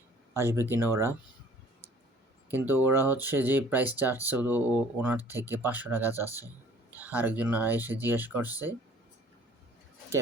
আসবে কিনা ওরা। কিন্তু ওরা হচ্ছে যে প্রাইস চাচ্ছে ওনার থেকে ৳500 চাচ্ছে। আরেকজন এসে জিজ্ঞেস করছে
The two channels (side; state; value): both; normal; correlation 0.52